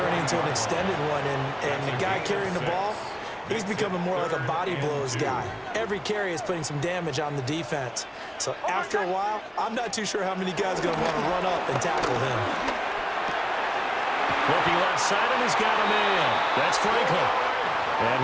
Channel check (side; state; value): both; identical; correlation 1.00